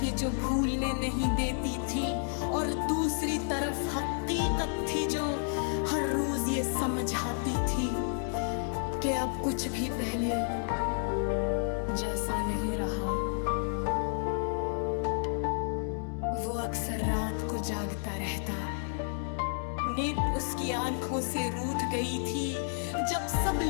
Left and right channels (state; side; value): silent; right; 57 dB below the other